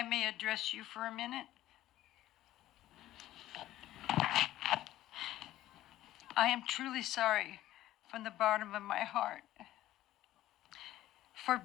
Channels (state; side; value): quieter; right; 14.4 dB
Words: may address you for a minute. I am truly sorry from the bottom of my heart for